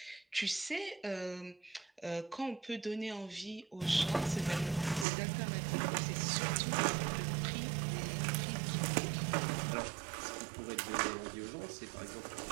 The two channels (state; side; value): drops out; left; at 5.1 s